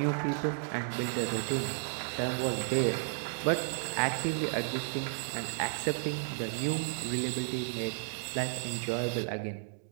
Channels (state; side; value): silent; left; digital silence